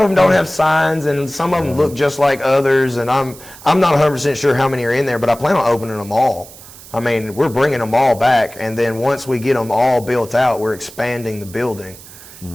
them don't have signs, and some of them look just like others, and I'm not 100% sure how many are in there, but I plan on opening them all. I mean, we're bringing them all back, and then once we get them all built out, we're expanding the building.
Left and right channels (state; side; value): noise; right; hiss, 19 dB below the sound